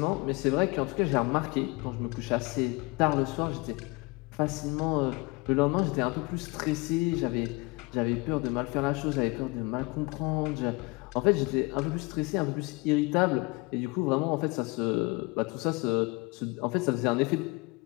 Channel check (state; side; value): quieter; right; 25.9 dB